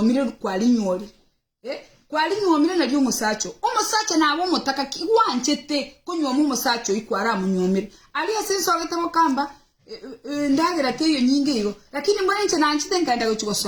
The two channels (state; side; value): identical; both; correlation 1.00